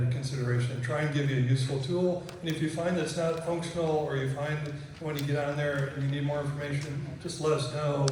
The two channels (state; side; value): identical; both; correlation 1.00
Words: consideration. Try and give you a useful tool, and if you find that it's not functional, or you find when you get on there and you need more information, just let us know.